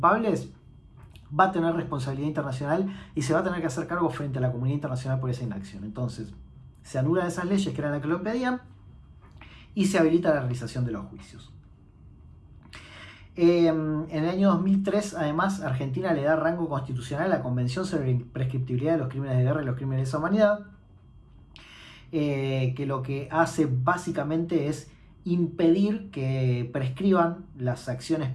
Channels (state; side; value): identical; both; correlation 1.00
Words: va a tener responsabilidad internacional y se va a tener que hacer cargo frente a la comunidad internacional por esa inacción. Entonces, se anulan esas leyes que eran las que lo impedían y se habilita la realización de los juicios. En el año 2003, además, Argentina le da rango constitucional a la Convención sobre la Imprescriptibilidad de los Crímenes de Guerra y los Crímenes de Lesa Humanidad, que lo que hace básicamente es impedir que prescriban las acciones